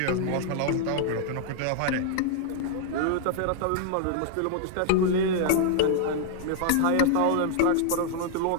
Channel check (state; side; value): different; both; correlation 0.00